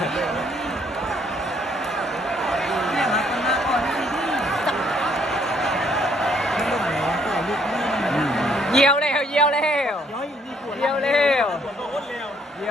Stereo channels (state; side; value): normal; both; correlation 0.67